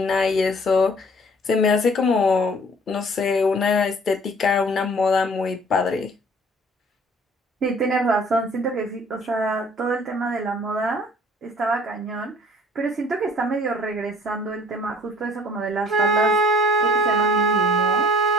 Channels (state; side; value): normal; both; correlation 0.53